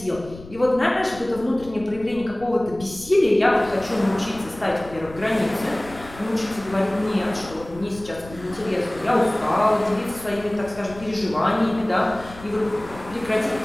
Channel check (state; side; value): noise; left; rumble, 17 dB below the sound